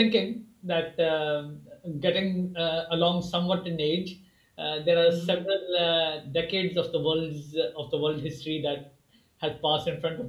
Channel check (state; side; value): identical; both; correlation 1.00